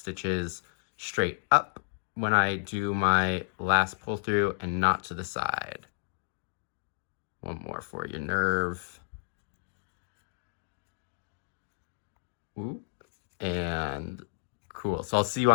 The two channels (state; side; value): silent; right; digital silence